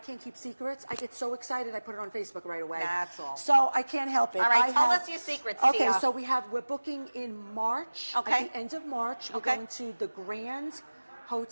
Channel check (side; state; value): both; inverted; correlation -1.00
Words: keep secrets. I get so excited, I put it on Facebook right away. That's all. So I can't help it. All right, tell us your secrets, Okay, Tia. so we're booking in March. Okay. At the end of March, we're going to the Grand